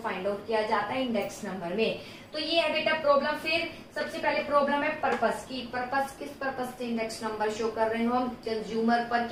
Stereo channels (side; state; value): both; identical; correlation 1.00